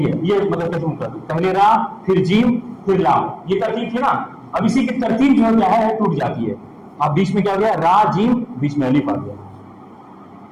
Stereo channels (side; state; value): both; identical; correlation 1.00